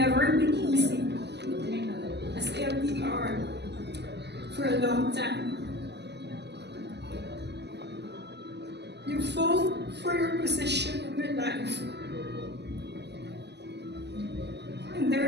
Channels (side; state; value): left; late; 0.50 ms